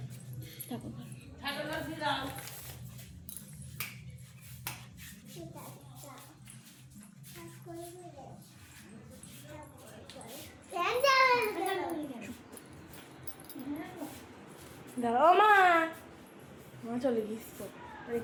ঠাকুর ঠাকুর কাছে যাও। দাঁড়াও মা, মা চলে গিয়েছ তো,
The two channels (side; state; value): both; identical; correlation 1.00